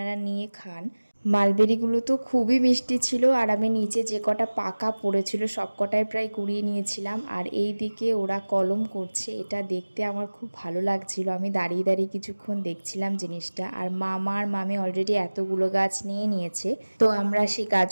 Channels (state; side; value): inverted; both; correlation -1.00